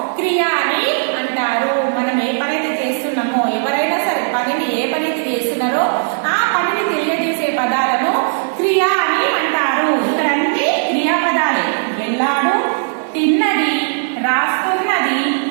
క్రియ అని అంటారు. మనం ఏ పని అయితే చేస్తున్నామో, ఎవరైనా సరే పనిని ఏ పని అయితే చేస్తున్నారో ఆ పనిని తెలియజేసే పదాలను క్రియ అని అంటారు. ఇక్కడ అన్ని క్రియాపదాలే. వెళ్ళాడు, తిన్నది, రాస్తున్నది,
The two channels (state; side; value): silent; left; 61 dB below the other